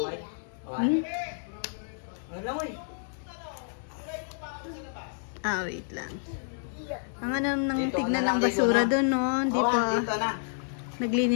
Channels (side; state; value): right; silent; digital silence